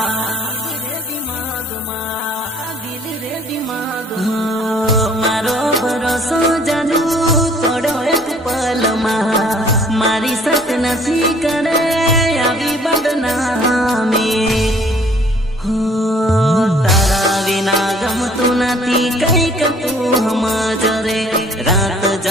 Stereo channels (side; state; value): both; normal; correlation 0.57